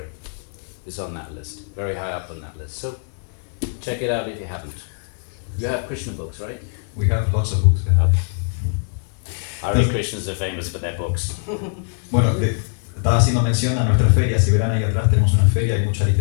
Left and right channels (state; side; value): silent; right; digital silence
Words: is on that list, very high up on that list. So check it out if you haven't. You have Krishna books, right? We have lots of books. Hare Krishnas are famous for their books. Bueno, estaba haciendo mención a nuestra feria. Si verán ahí atrás tenemos una feria, hay mucha